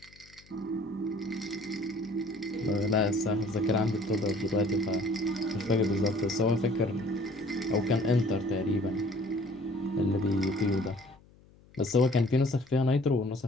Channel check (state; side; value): noise; left; hum, 27 dB below the sound